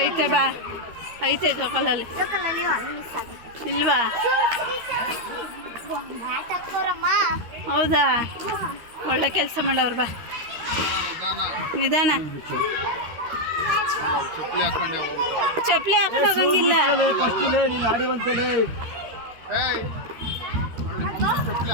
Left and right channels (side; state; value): left; late; 13 ms